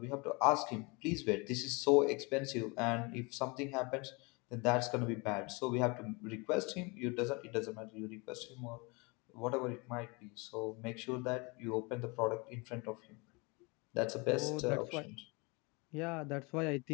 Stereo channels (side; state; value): right; quieter; 28.5 dB